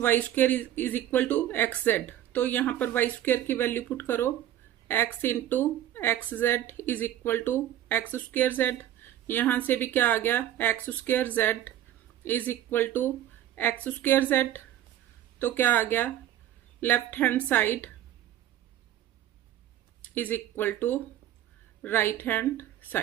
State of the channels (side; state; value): left; quieter; 12.1 dB